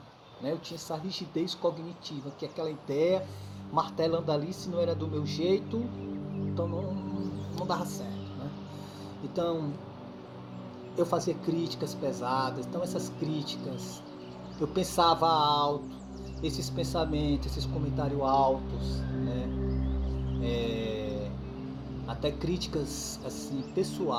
né? Eu tinha essa rigidez cognitiva, que é aquela ideia martelando ali, se não era do meu jeito, então não dava certo, né? Então eu fazia críticas pesadas, então essas críticas, eu pensava alto, esses pensamentos, esses comentários altos, né? Até críticas assim,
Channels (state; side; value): identical; both; correlation 1.00